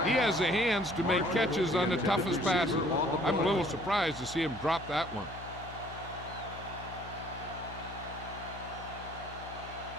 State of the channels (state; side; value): noise; left; hum, 14 dB below the sound